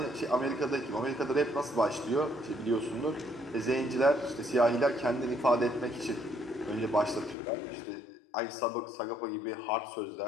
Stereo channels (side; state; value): right; drops out; at 7.4 s